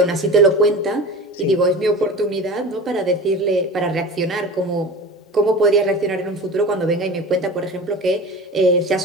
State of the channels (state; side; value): normal; both; correlation 0.34